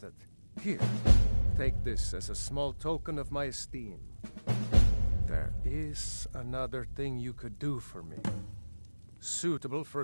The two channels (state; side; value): inverted; both; correlation -1.00